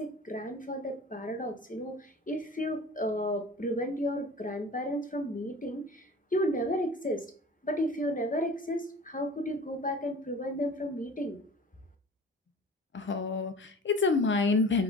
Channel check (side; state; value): both; normal; correlation 0.41